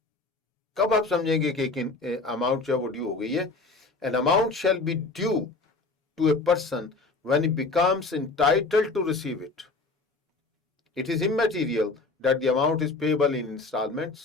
कब आप समझेंगे कि अमाउंट जो है वो ड्यू हो गई है? An amount shall be due to a person when he becomes entitled to receive it. It is immaterial that the amount is payable in installments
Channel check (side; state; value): right; quieter; 3.7 dB